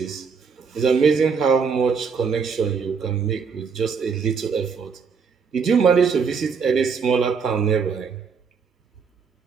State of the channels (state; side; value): quieter; left; 5.8 dB